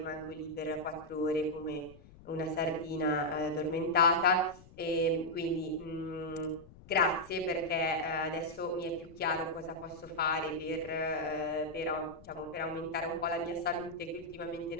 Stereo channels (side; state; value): left; noise; rumble, 21 dB below the sound